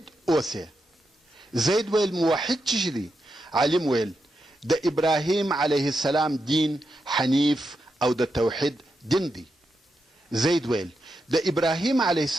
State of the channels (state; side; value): normal; both; correlation 0.86